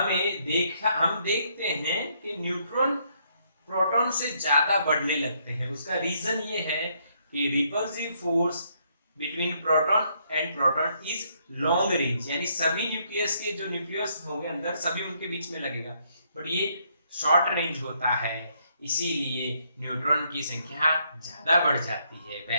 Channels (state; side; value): inverted; both; correlation -0.72